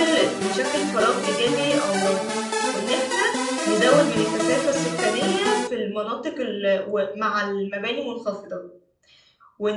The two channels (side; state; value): both; identical; correlation 1.00